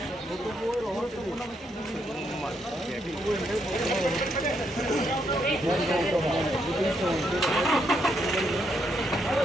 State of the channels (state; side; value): normal; both; correlation 0.77